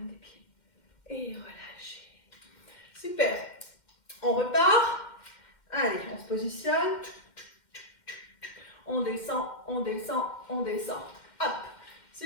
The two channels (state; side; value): late; right; 2.1 ms